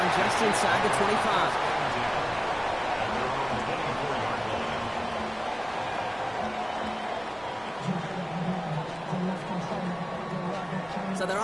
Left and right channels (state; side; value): noise; left; hum, 25 dB below the sound